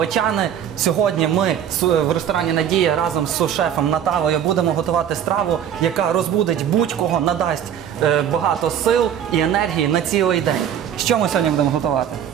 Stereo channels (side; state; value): left; quieter; 9.4 dB